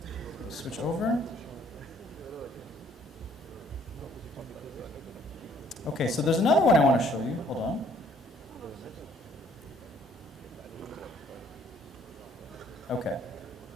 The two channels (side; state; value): both; normal; correlation 0.62